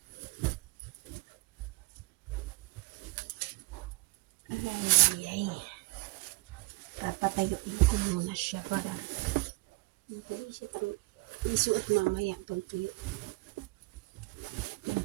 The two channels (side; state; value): left; quieter; 24.4 dB